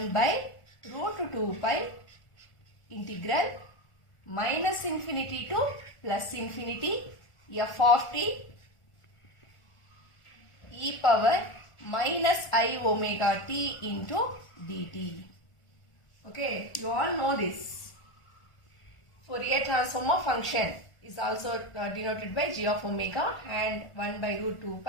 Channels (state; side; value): late; right; 1.4 ms